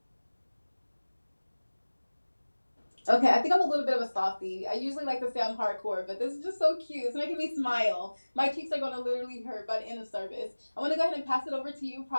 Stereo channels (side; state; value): both; inverted; correlation -1.00